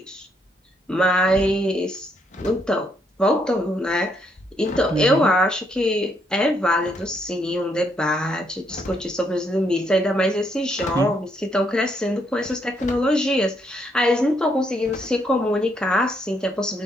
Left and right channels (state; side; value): normal; both; correlation 0.74